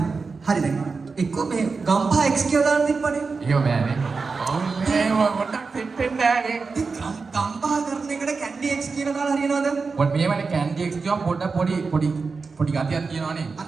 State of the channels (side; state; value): left; quieter; 4.5 dB